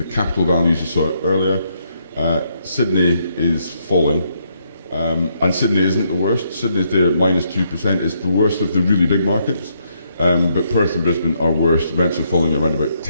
capital values you saw earlier. Sydney is falling, and Sydney isn't the worst. Sydney's there at -2%. It's the worst of the really big markets, but Perth and Brisbane are worst. Rents are falling around about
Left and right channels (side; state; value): both; inverted; correlation -0.74